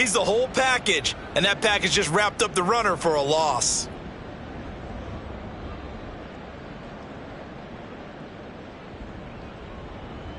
the whole package, and that package just wrapped up the runner for a loss.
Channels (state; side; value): identical; both; correlation 1.00